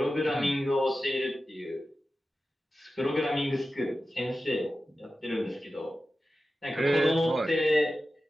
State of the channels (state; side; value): normal; both; correlation 0.94